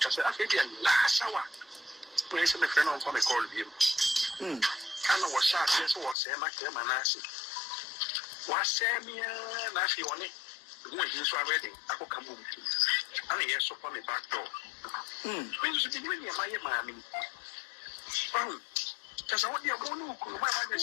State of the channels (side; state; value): right; drops out; at 6.2 s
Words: say, I think last hour. Place in the friend on a call him. I know what shot this was a Macam and Nasi. Was Samia Nasi on it? When he's already, I will come home. And yes, upon the back door. When you be doing your mammy. Oh, just what you're going to do. My